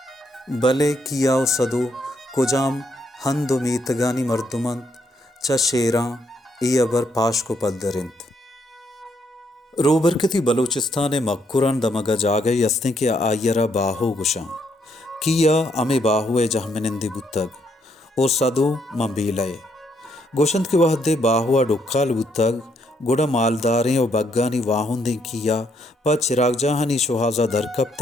भले कियाओ सदो कुजाम हंदो मीतगानी मर्दुमंत च शेरा ई अबर पाश को पद्दरिंत रोबरकती बलूचिस्तान मक्कुरान दमगा जागे यस्ते के आयरा बाहो गुशा किया अमे बाहुए जहमनिंदी बुतग ओ सदो मंबीलय गोशंत के वहदे बाहुआ डुक्काल बुतग गुड़ा मालदारें और बग्गानी वाहुंदे किया प चिराग जहानी शुहाजा दरकब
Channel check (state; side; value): normal; both; correlation 0.73